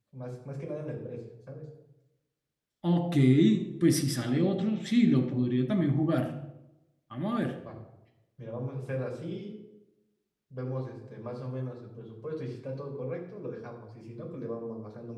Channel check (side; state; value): both; identical; correlation 1.00